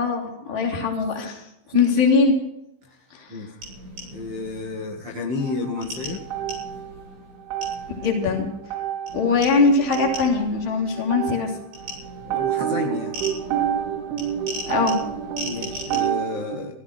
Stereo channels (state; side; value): late; left; 15 ms